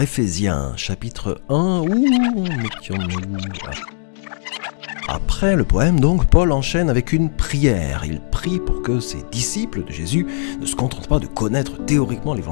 Éphésiens, chapitre 1, mettions-nous là. Après le poème, donc, Paul enchaîne avec une prière. Il prie pour que ses disciples de Jésus ne se contentent pas de connaître théoriquement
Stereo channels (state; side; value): silent; right; digital silence